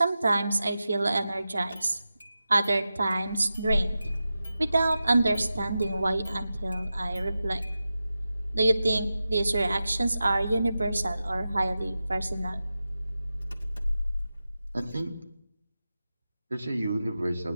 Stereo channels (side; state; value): both; inverted; correlation -0.93